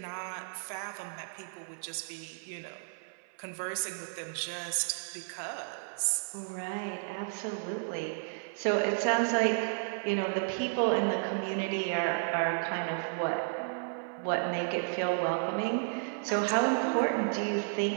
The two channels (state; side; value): silent; left; 56 dB below the other